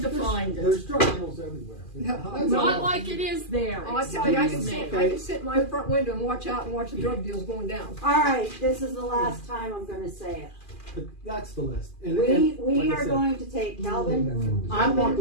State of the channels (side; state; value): right; late; 2.4 ms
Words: to find it. There's drug deals everywhere. Not like it is there. I tell you, I can Excuse sit in my front window and watch out and watch the drug deals going down. All right, this is the last time I'm going to say it. But that's the list. And, We like I are said, going to take Calvin. I'm not